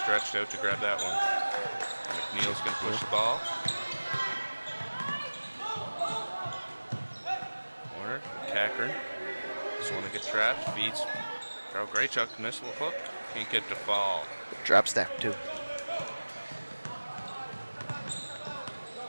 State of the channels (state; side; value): inverted; both; correlation -1.00